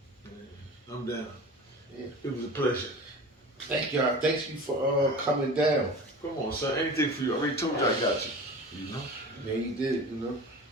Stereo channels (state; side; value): normal; both; correlation 0.36